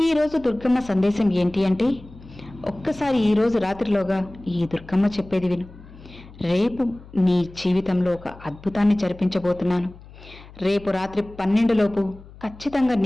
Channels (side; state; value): left; noise; hum, 20 dB below the sound